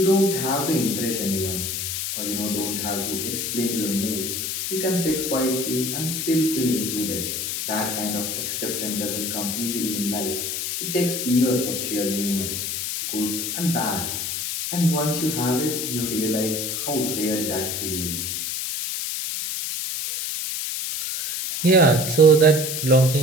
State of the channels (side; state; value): left; noise; hiss, 2 dB below the sound